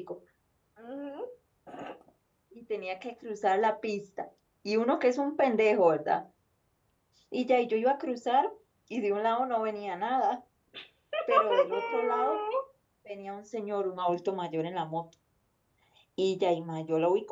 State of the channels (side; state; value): both; identical; correlation 1.00